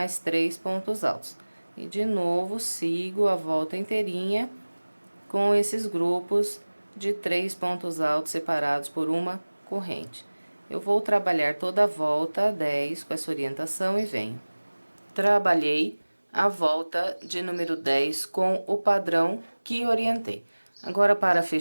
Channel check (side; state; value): both; inverted; correlation -1.00